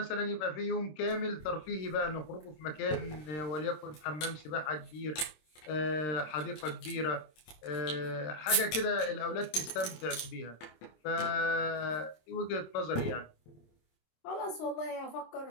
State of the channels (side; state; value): right; late; 26 ms